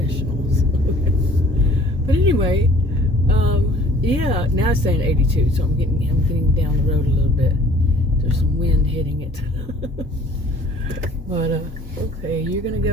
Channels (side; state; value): both; normal; correlation 0.53